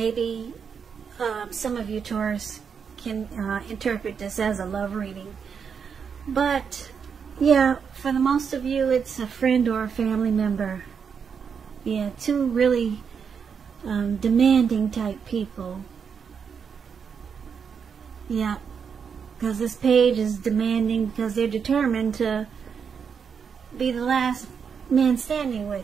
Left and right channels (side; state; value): left; quieter; 6.6 dB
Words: some of you Taurus can interpret this as a love reading. But yeah, for the most of you, it's a friend or a family member. Yeah, 2 really demanding type people. Yeah, because this page is demanding because they're determined to be the last man standing